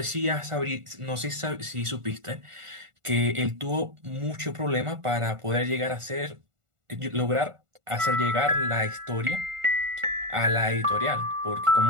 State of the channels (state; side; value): late; left; 1.4 ms